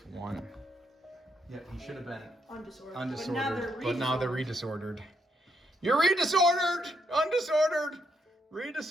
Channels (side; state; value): both; normal; correlation 0.77